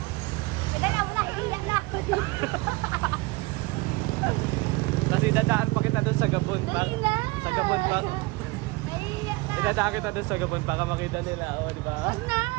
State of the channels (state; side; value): quieter; left; 23.3 dB